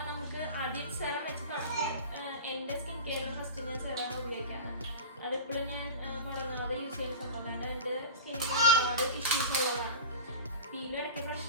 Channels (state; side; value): inverted; both; correlation -0.32